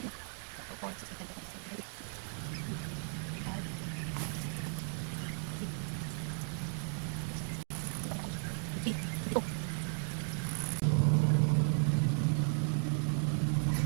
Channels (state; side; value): silent; left; 54 dB below the other